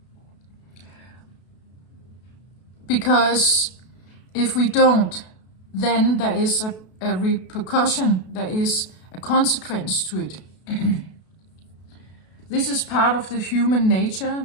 Because if we don't, then there is a repercussion, there is a consequence to it. This is part of the human nature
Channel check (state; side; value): late; right; 32 ms